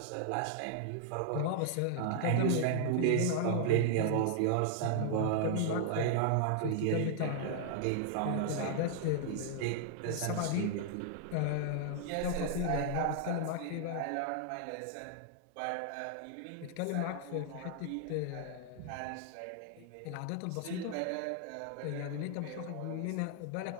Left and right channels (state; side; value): different; both; correlation 0.00